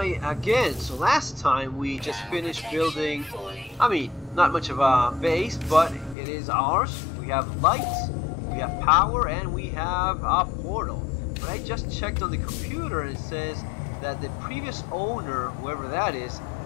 again. So last time we just finished building, not much of a base, but it is ours. We have lights, we have power, and we have a portal. But I just checked on the computer and it says that the previous owner, whoever that is,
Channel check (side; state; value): right; drops out; at 6.2 s